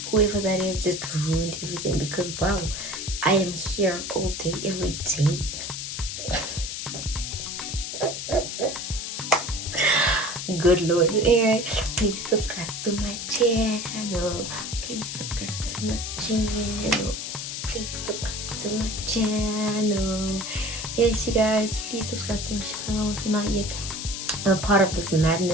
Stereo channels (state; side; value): noise; left; hiss, 5 dB below the sound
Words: whoever that is just ruined everything, because wow, I am here all day, every day. Good Lord. Anyway, please subscribe to my channel. Please subscribe to my channel. Please subscribe to my channel. Yes, you guys, please subscribe to my channel if you're not yet a part of this